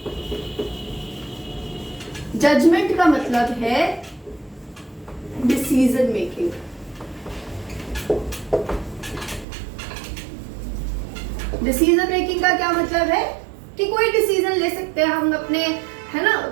जजमेंट का मतलब है डिसीजन मेकिंग। डिसीजन मेकिंग का क्या मतलब है कि कोई डिसीजन ले सकते हैं हम अपने, है ना,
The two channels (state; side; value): drops out; left; at 9.5 s